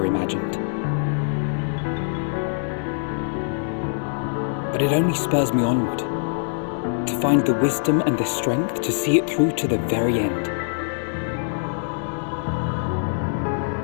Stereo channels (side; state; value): right; silent; digital silence